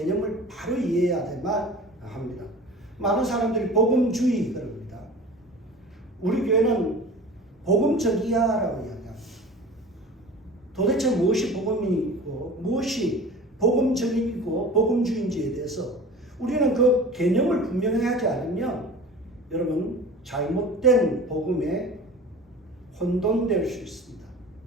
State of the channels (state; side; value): normal; both; correlation 0.39